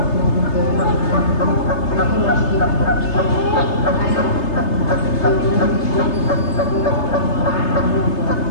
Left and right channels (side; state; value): right; late; 3.3 ms